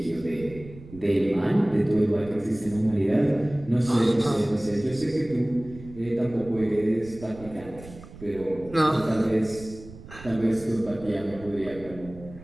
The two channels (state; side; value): noise; right; rumble, 17 dB below the sound